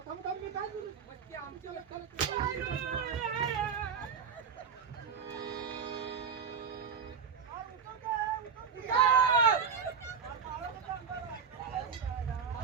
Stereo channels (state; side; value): quieter; left; 6.3 dB